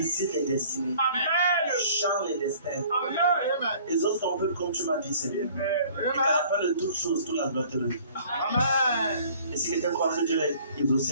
les destinées. Change les destins. Les autres sont un peu comme tu m'as dit, Seigneur. Et qu'à la fin de toutes choses, tout la gloire te revient. Et si quelqu'un croit que Dieu est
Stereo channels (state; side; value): inverted; both; correlation -0.53